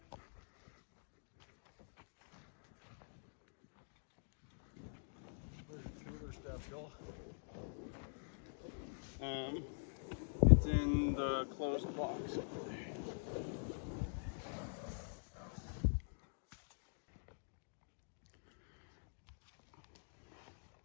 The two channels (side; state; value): right; silent; digital silence